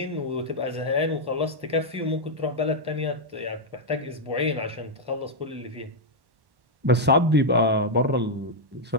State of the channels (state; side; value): late; left; 1.1 ms